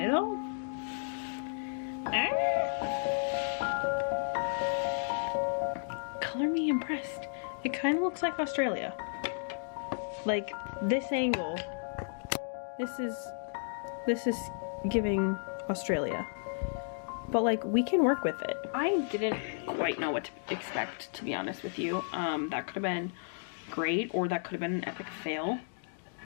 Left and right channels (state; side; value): silent; right; digital silence